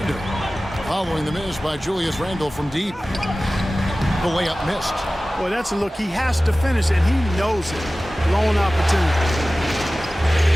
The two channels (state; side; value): normal; both; correlation 0.97